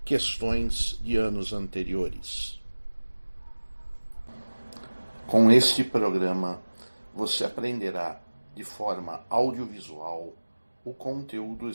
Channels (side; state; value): both; inverted; correlation -1.00